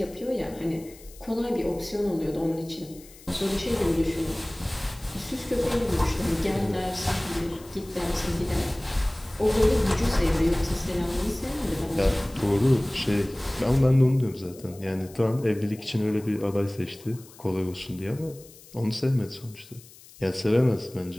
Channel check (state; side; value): noise; left; hiss, 22 dB below the sound